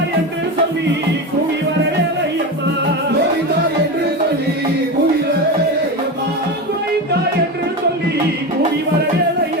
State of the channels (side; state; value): both; normal; correlation 0.20